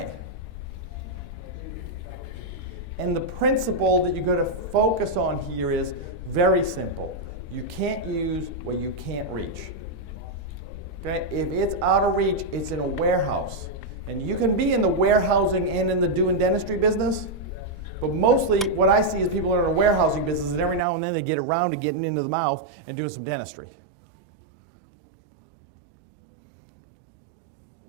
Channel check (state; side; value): drops out; left; at 20.9 s